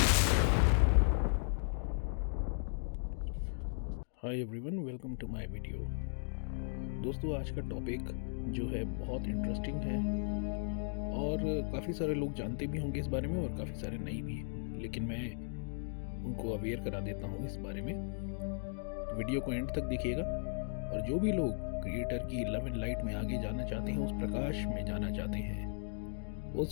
everyone, welcome to my video. दोस्तों, आज का टॉपिक जो है बहुत इंटरेस्टिंग है और काफ़ी सारे लोग जानते भी होंगे इस बारे में और काफ़ी सारे नहीं भी, लेकिन मैं उनको अवेयर करा देता हूँ इस बारे में। तो वीडियो को एंड तक देखिएगा और जो भी लोग क्रिएटर की लव एंड लाइट में आगे जाना चाहते हैं, उस प्रकाश में जाना चाहते हैं,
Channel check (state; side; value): silent; right; digital silence